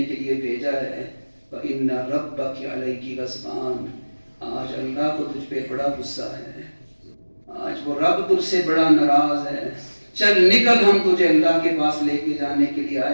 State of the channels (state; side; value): inverted; both; correlation -1.00